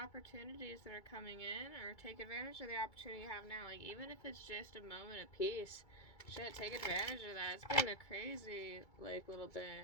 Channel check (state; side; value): late; right; 2.3 ms